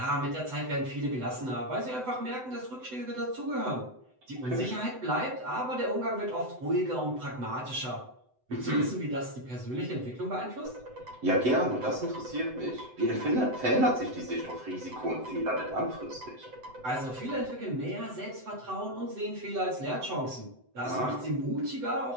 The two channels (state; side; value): late; left; 7.9 ms